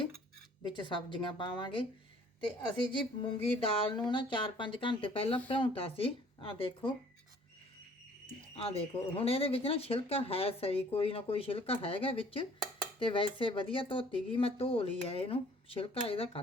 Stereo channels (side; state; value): both; normal; correlation 0.56